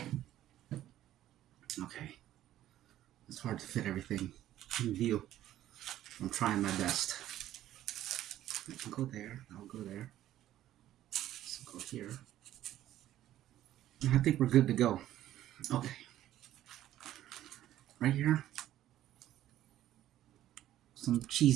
Okay. It's hard to fit everything in view. I'm trying my best. I'll go there. I'll go there. Let's go here. And I think we're good to go. Okay. Right here. Some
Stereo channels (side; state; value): left; quieter; 13.0 dB